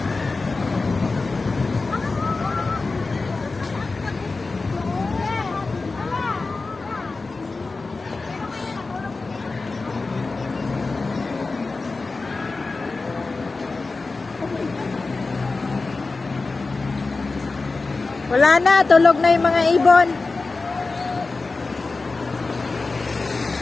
Wala na, tulog na yung mga ibon.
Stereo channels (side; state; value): right; quieter; 3.8 dB